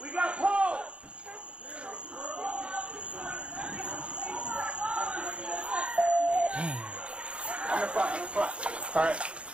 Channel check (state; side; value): late; left; 0.059 ms